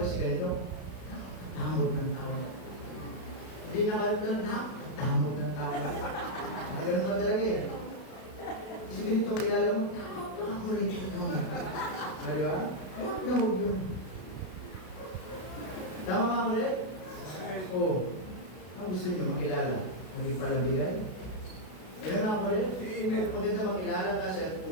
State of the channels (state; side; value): late; right; 32 ms